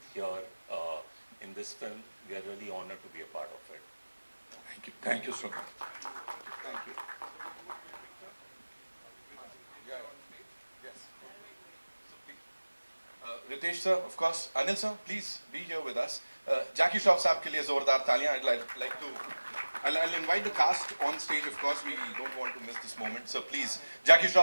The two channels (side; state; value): both; inverted; correlation -1.00